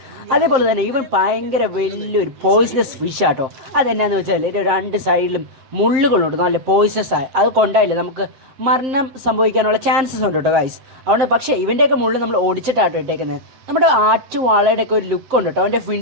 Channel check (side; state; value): left; late; 7.6 ms